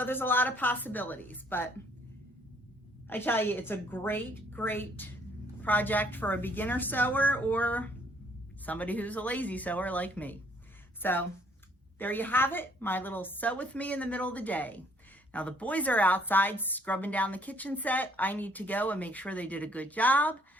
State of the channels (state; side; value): normal; both; correlation 0.64